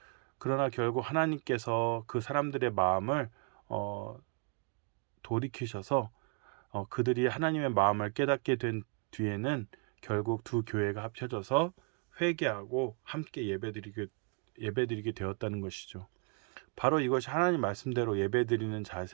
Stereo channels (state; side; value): quieter; left; 38.0 dB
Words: 그러나 결국 하나님께서 그 사람들의 마음을 돌이키셔서 그들이 하나님의 마음을 깨닫게 된 뒤에는 결국 두 교회가 합쳐져서 회개하고 함께 예배드리게 되었다는 것이죠. 바로 이것이 하나님 말씀대로 예배드리는